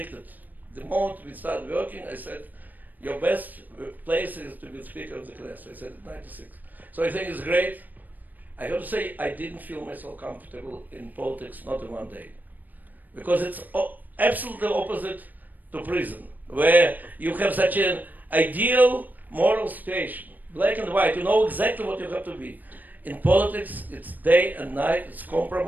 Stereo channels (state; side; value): late; left; 0.085 ms